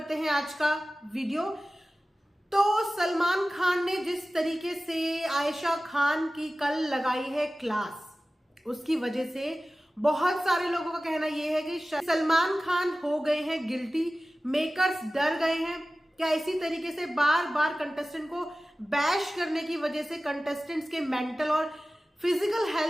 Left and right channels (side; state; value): both; normal; correlation 0.96